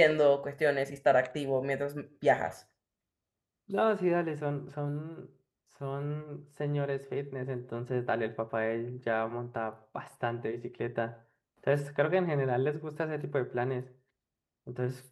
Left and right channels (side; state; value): both; identical; correlation 1.00